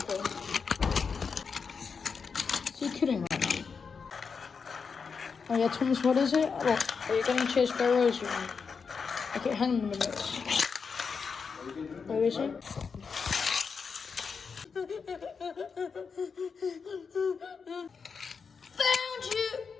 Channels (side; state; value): right; quieter; 5.6 dB